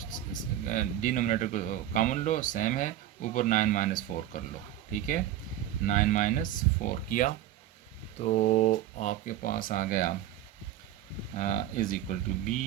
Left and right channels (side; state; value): left; quieter; 12.2 dB